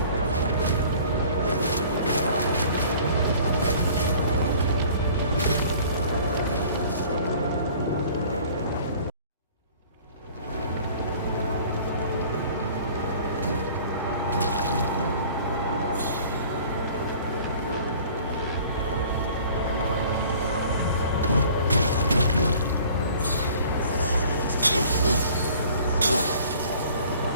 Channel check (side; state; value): both; inverted; correlation -0.49